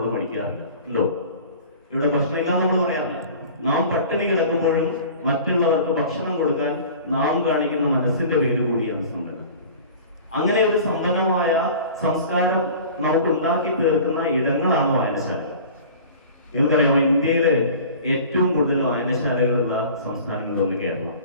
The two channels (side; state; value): both; inverted; correlation -0.42